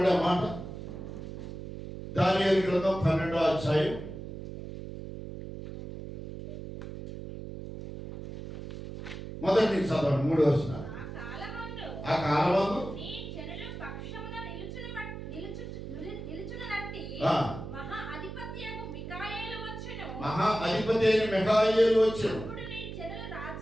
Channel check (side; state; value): right; noise; hum, 9 dB below the sound